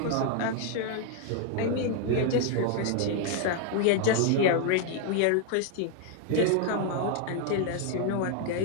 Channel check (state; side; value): different; both; correlation 0.00